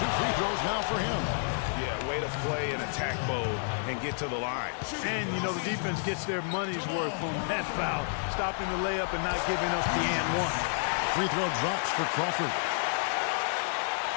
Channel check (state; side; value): silent; right; digital silence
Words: 2 free throws now for him. Yeah, way to play in attack mode and get to the line. And, you know, the defense gets their money's worth on that foul, stopping the layup and not giving up the and one. Free throw drops for Crawford.